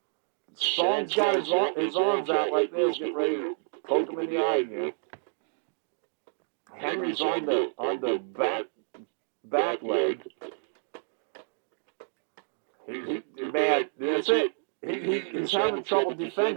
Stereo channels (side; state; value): left; silent; digital silence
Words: Sean's got his arms out like this, getting ready to poke him in the eye again. Henry's on the back leg. Man, that's it. He's having trouble